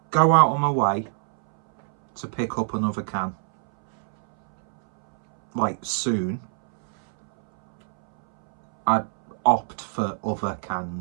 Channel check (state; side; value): silent; left; 63 dB below the other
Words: go out on my way to pick up another can, like, soon. I'd opt for other